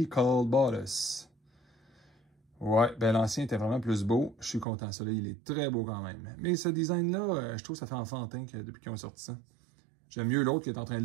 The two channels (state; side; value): drops out; left; at 4.7 s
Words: Bottas. Ouais, ben l'ancien était vraiment plus beau. Je suis content. Celui-là, il est très beau quand même. Mais ce design-là, je trouve que ça fait enfantin depuis qu'ils ont sorti ça. J'aime mieux l'autre qui est en train de